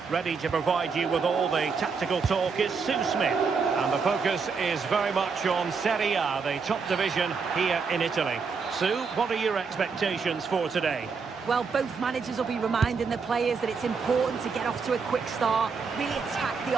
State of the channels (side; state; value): left; quieter; 5.3 dB